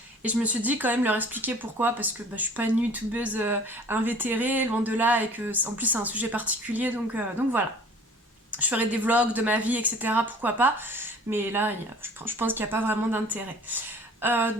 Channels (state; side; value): normal; both; correlation 0.49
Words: Et je me suis dit quand même leur expliquer pourquoi, parce que je suis pas une youtubeuse invétérée, loin de là, et que en plus c'est un sujet particulier, donc voilà. Je ferai des vlogs de ma vie, etc. Pourquoi pas, mais là je pense qu'il n'y a pas vraiment d'intérêt.